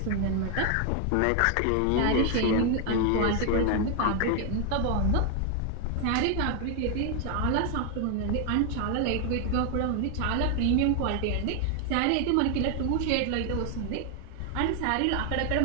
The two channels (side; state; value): both; different; correlation 0.01